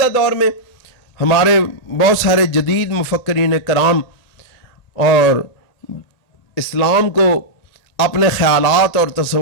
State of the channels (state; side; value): late; right; 1.9 ms